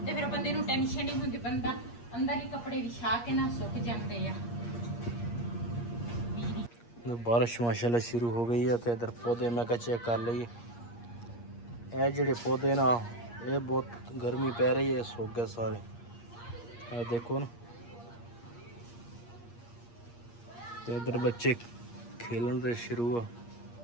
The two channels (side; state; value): right; late; 8.5 ms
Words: ਤੇ ਫਿਰ ਬੰਦੇ ਨੂੰ ਟੈਨਸ਼ਨ ਨਹੀਂ ਹੁੰਦੀ, ਬੰਦਾ ਅੰਦਰ ਹੀ ਕੱਪੜੇ ਵਿਛਾ ਕੇ ਨਾ ਸੁੱਕ ਜਾਂਦੇ ਆ। बारिश माशाल्लाह शुरू हो गई है तो इधर पौधे मैं चेक कर ली। ये जेडे पौधे ना ये बहुत गर्मी पै रही है, सूख गए सारे। ये देखो ना, तो इधर बच्चे खेलन से शुरू है।